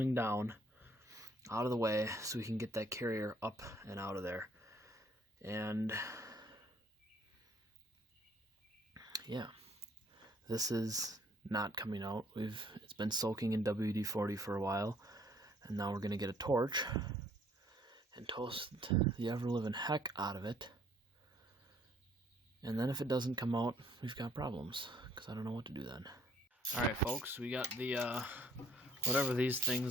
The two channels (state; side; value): normal; both; correlation 0.63